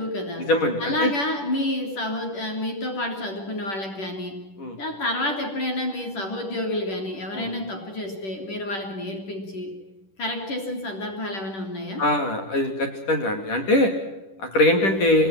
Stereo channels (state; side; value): late; right; 10 ms